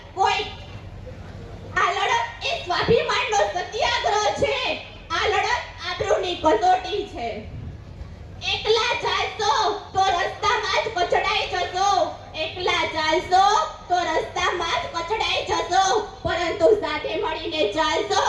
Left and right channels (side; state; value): both; identical; correlation 1.00